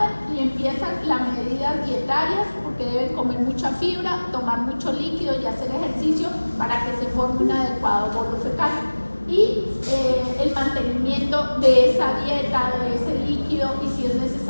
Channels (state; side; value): inverted; both; correlation -1.00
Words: y empiezan las medidas dietarias porque deben comer mucha fibra, tomar mucho líquido y hacer ejercicio para que se forme un adecuado bolo fecal. Y el mantenimiento de esa dieta, de ese líquido y si es